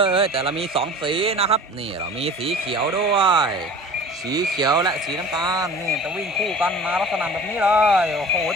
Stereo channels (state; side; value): normal; both; correlation 0.41